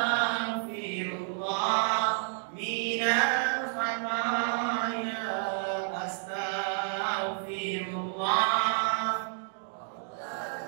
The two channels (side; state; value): left; silent; digital silence